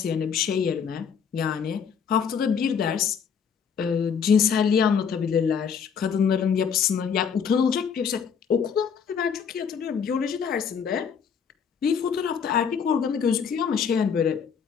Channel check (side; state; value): right; quieter; 6.8 dB